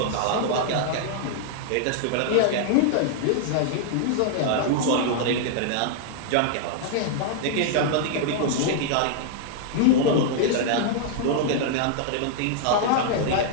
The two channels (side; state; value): both; different; correlation -0.01